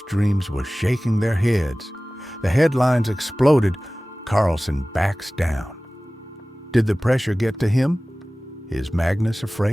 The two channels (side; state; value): both; normal; correlation 0.98